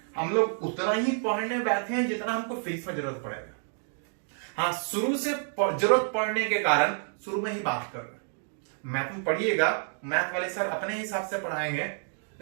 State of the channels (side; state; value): left; silent; 58 dB below the other